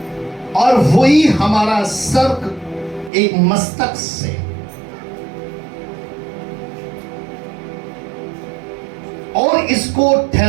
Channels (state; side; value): drops out; left; at 3.1 s